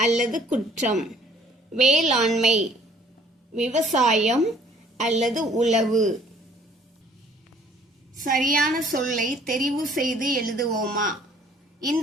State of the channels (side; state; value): both; normal; correlation 0.57